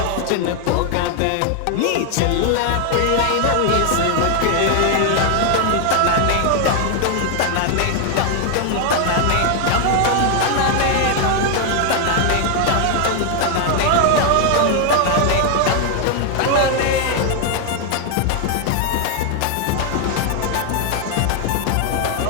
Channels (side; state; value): both; different; correlation 0.00